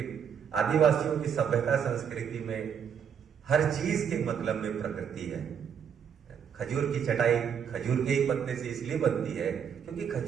आदिवासियों की सभ्यता संस्कृति में हर चीज के मतलब में प्रकृति है। खजूर की चटाई खजूर के ही पत्ते से इसलिए बनती है क्योंकि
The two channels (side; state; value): left; quieter; 7.7 dB